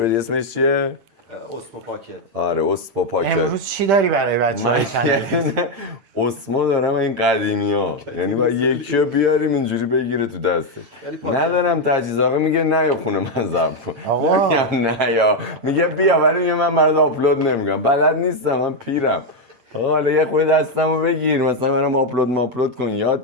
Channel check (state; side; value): late; left; 8.9 ms